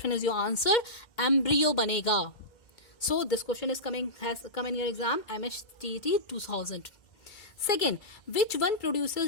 is your answer, embryo बनेगा. So this question has come in your exam MHTT 2000. Second, which one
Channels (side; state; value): right; late; 2.1 ms